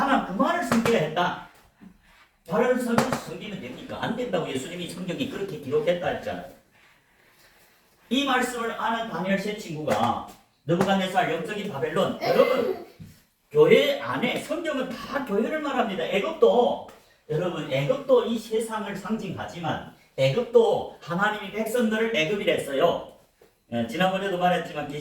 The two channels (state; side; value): identical; both; correlation 1.00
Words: 그만을 섬기려 했다. 다른 선을 섬기면 됩니까? 안 된다고 예수님이 성경에 그렇게 기록했다 했잖아요. 이 말씀을 아는 다니엘 세 친구가 느부갓네살 영적인 바벨론, 여러분 교회 안에 성경은 다 교회를 말합니다. 애굽도 이 세상을 상징하지만 애굽도 하나님이 백성들을 애굽이라 했어요. 지난번에도 말했지만